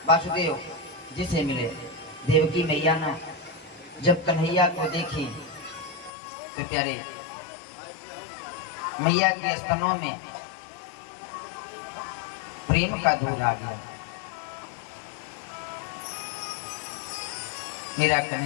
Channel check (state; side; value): drops out; right; at 6.1 s